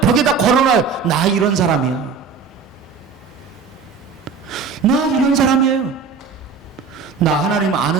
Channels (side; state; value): left; quieter; 5.5 dB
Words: 걸어놔요. 나 이런 사람이야. 나 이런 사람이에요. 나 하나님